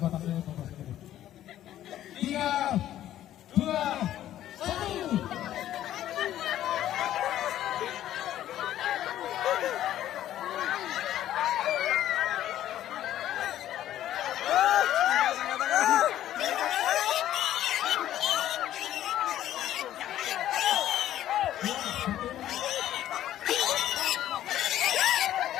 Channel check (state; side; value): quieter; right; 12.4 dB